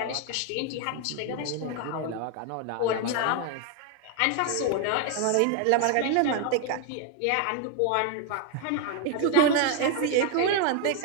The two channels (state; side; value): different; both; correlation 0.00